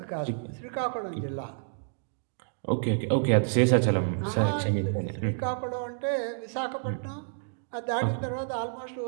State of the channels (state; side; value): silent; left; digital silence